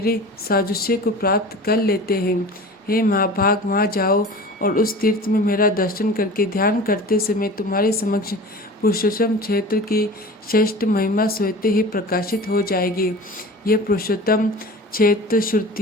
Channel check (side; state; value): both; normal; correlation 0.37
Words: साजुष्य को प्राप्त कर लेते हैं। हे महाभाग, वहाँ जाओ और उस तीर्थ में मेरा दर्शन करके ध्यान करते समय तुम्हारे समक्ष पुरुषोत्तम क्षेत्र की श्रेष्ठ महिमा स्वतः ही प्रकाशित हो जाएगी। यह पुरुषोत्तम क्षेत्र